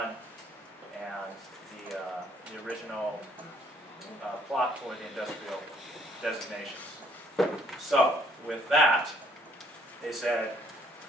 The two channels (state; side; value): normal; both; correlation 0.64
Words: and the original plot for the industrial designations. So, with that, they said,